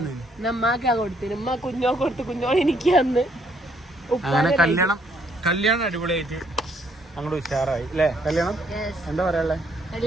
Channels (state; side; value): normal; both; correlation 0.68